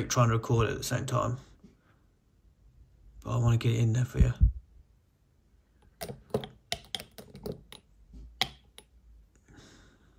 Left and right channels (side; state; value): both; identical; correlation 1.00